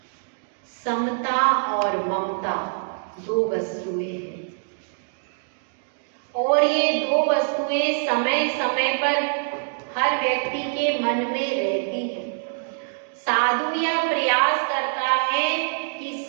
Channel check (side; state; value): left; silent; digital silence